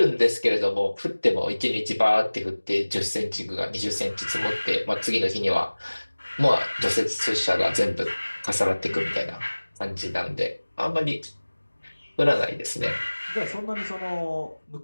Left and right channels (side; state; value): both; inverted; correlation -1.00